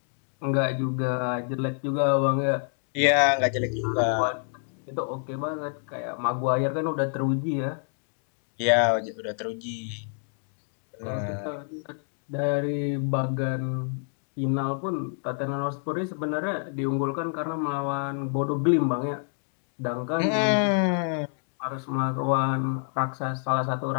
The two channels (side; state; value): right; silent; 60 dB below the other